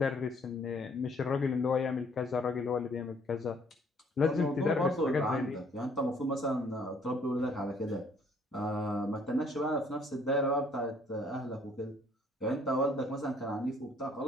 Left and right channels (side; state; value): both; normal; correlation 0.61